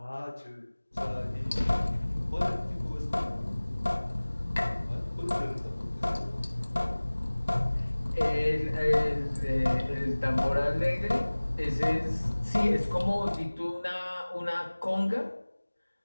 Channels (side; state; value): both; inverted; correlation -1.00